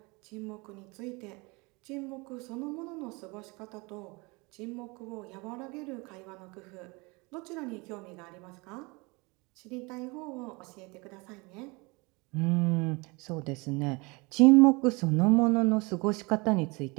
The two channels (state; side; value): quieter; left; 26.9 dB